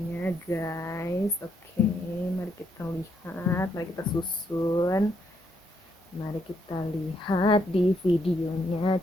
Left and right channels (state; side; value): normal; both; correlation 0.75